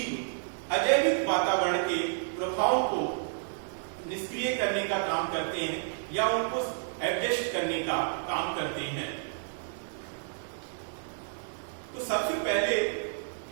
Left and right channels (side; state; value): left; silent; digital silence